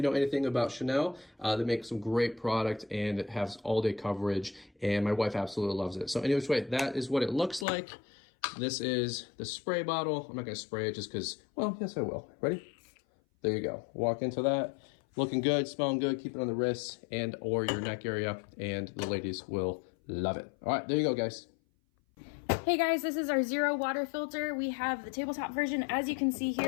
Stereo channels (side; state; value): right; drops out; at 7.7 s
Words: know anything about Chanel, they make some great product, and it has all day coverage, and my wife absolutely loves it. So anyways, that is what it looks like. This is the spray bottle. I'm not going to spray it just because, well, yes, I will. Ready? There you go. Walk into that. Looking good, smelling good. Keep it on the wrists and or your neck area, and the ladies will love it. All right, there you go, guys. Hey guys, this is our zero water filter. We have the tabletop version. As you can see